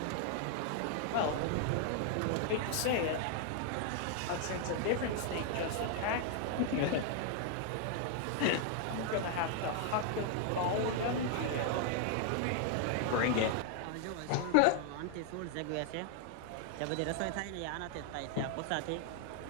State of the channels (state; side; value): different; both; correlation 0.00